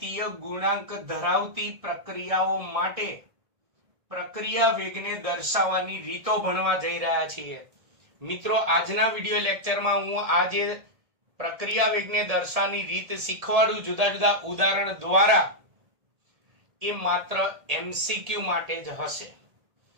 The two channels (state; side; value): late; left; 1.8 ms